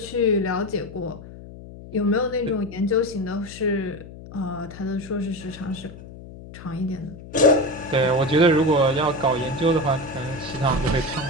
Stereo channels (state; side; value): noise; left; hum, 15 dB below the sound